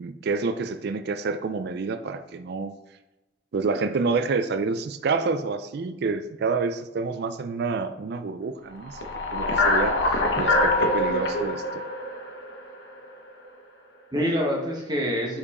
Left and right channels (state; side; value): normal; both; correlation 0.11